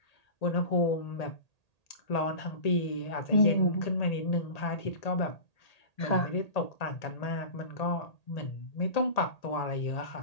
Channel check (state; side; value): late; right; 1.8 ms